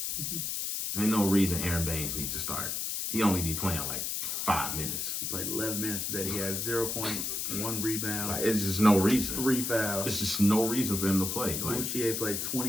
Ain't no reason Aaron Baines needs to start. He only be playing like 5 minutes. He played 11 minutes today. He had 0 points, 1 rebound. Like, it's just no reason. 3 fouls. There's just no reason for him to play. Like, Boucher played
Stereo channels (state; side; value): noise; left; hiss, 2 dB below the sound